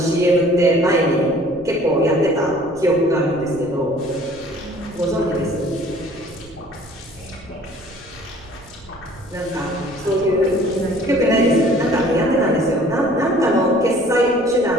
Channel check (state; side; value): noise; right; rumble, 22 dB below the sound